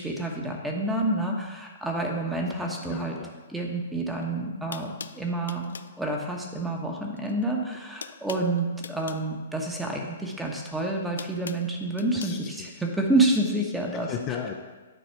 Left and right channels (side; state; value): both; normal; correlation 0.00